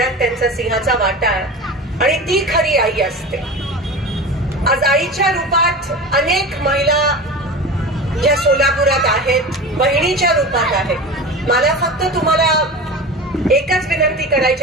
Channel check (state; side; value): normal; both; correlation 0.31